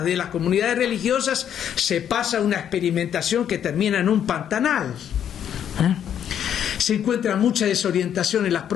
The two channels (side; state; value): right; quieter; 9.4 dB